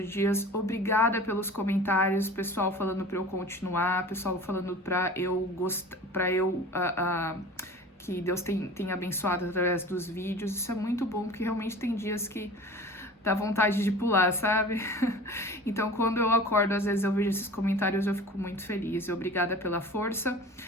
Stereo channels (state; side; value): normal; both; correlation 0.39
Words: dias. Obrigada pelos comentários, pessoal falando para eu continuar, pessoal falando para eu que Deus tem abençoado através dos vídeos. Isso é muito bom, porque realmente tem dias que dá vontade de pular, sabe? Então, quando eu acordo, às vezes eu vejo esses comentários, eu fico muito feliz. Obrigada pela força.